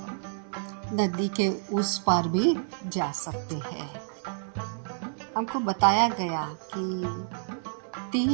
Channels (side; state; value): left; silent; 59 dB below the other